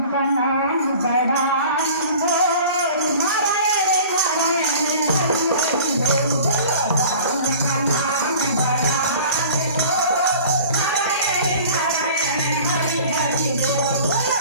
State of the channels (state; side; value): inverted; both; correlation -0.44